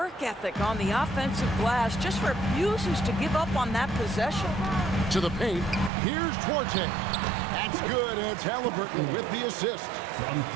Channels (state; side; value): drops out; left; at 5.9 s